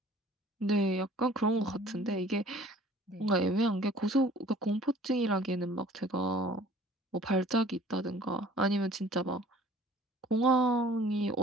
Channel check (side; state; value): both; normal; correlation 0.50